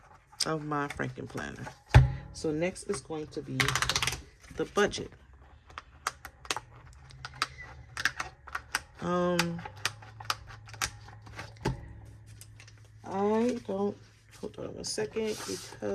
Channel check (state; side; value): identical; both; correlation 1.00